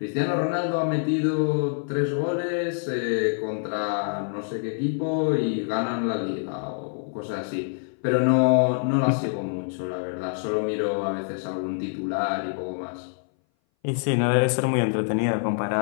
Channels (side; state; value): right; silent; 59 dB below the other